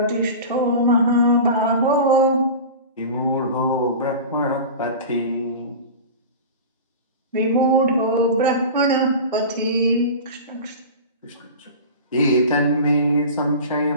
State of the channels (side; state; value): both; inverted; correlation -0.33